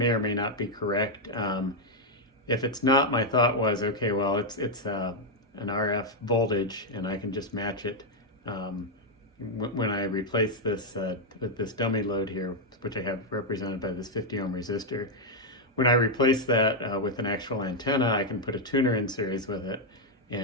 or may not be correct. If it's not, my thought was, okay, well, it's an RF voltage, and I can just match it when I replace this with this dummy load here, which I have represented by this 50 ohm resistor. When I replace that with an actual antenna, I can put a tuner in series with it,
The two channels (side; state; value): both; normal; correlation -0.02